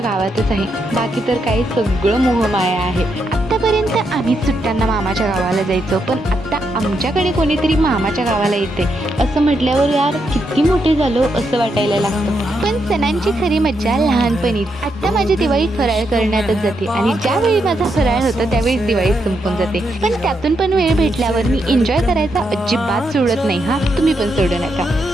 आहे, बाकी तर काही सगळं मोहमाया आहे। आतापर्यंत आम्ही सुट्ट्यांना मामाच्या गावाला जायचो, पण आता आमच्याकडे कोणीतरी मामाच्या गावाला येते असं म्हटल्यावर यार किती मोठे झालो असं वाटायला लागतं। पण सणांची खरी मज्जा लहानपणीच। आता माझी दिवाळी फराळ करण्यातच जाते आणि ज्यावेळी माझा फराळ होतो त्यावेळी दिवाळी संपून जाते। पण त्यातून पण वेळ भेटल्यावर मी एन्जॉय करायचा अजिबात सोडत नाही हा, तुम्ही पण सोडू नका।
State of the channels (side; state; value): both; normal; correlation 0.81